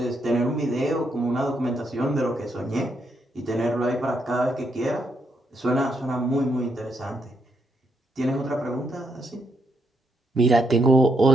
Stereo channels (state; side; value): normal; both; correlation 0.78